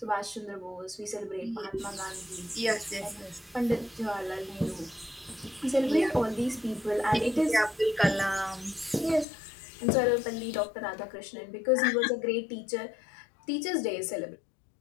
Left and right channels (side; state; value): right; drops out; at 9.2 s